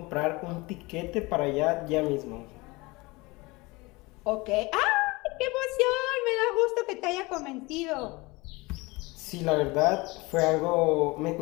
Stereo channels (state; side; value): quieter; right; 23.6 dB